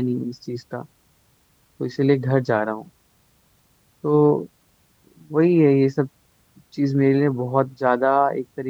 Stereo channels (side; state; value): both; identical; correlation 1.00